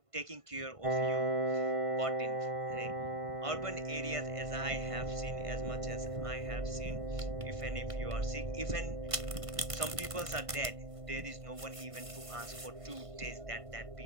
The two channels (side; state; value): left; late; 1.5 ms